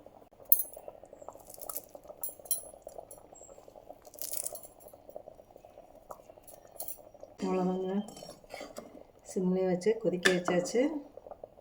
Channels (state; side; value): identical; both; correlation 1.00